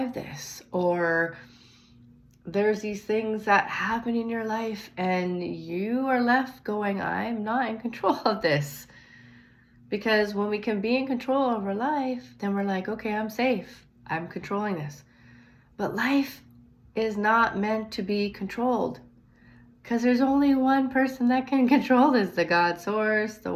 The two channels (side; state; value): both; identical; correlation 1.00